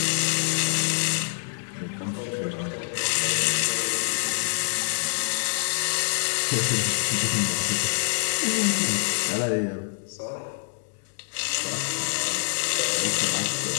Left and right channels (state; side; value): silent; right; digital silence